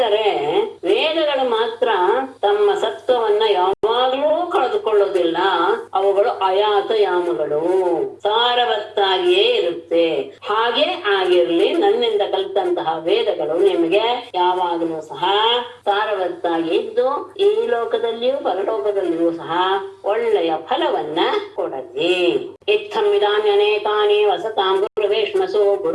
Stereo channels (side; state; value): both; identical; correlation 1.00